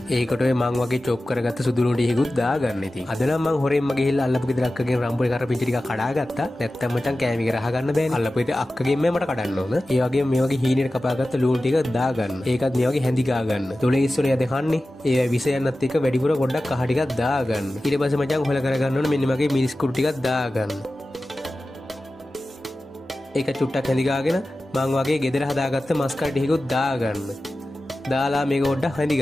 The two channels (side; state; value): both; normal; correlation 0.95